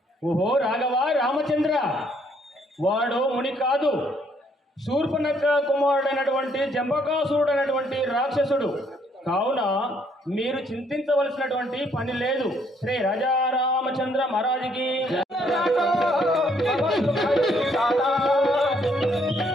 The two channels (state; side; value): normal; both; correlation 0.68